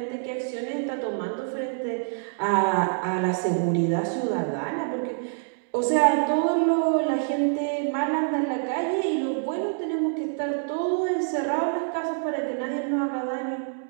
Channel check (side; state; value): left; silent; digital silence